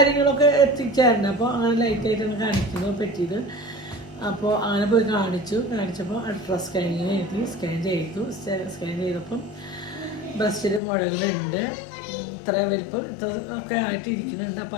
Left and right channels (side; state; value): right; drops out; at 10.8 s